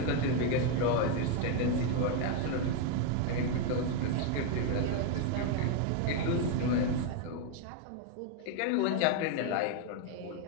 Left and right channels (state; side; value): different; both; correlation 0.01